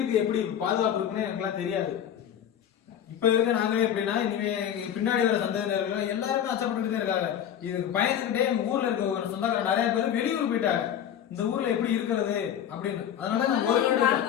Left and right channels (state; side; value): quieter; right; 9.7 dB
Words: எப்படி பாதுகாப்பு இருக்குன்னு எனக்குலாம் தெரியாது. இப்ப இருக்க நாங்களே எப்படின்னா இனிமே பின்னாடி வர சந்ததியினர்கள் எல்லாருமே அச்சப்பட்டு தான் இருக்காங்க. இதுக்கு பயந்துகிட்டே ஊர்ல இருக்க ஒரு சொந்தக்கார நிறைய பேர் வெளியூர் போயிட்டாங்க. இந்த ஊர்ல எப்படி இருக்கிறது அப்படின்னு. அதனால